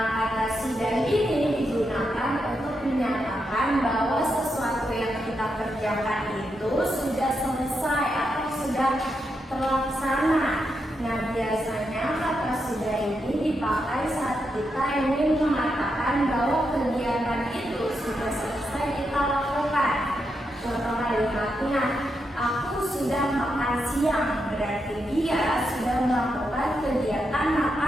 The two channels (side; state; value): both; normal; correlation 0.84